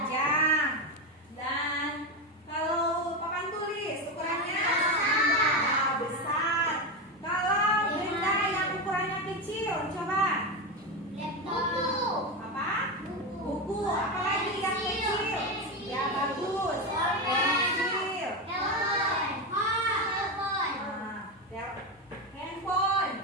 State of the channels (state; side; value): normal; both; correlation 0.14